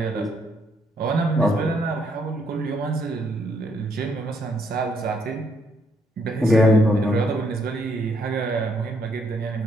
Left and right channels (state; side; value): normal; both; correlation 0.73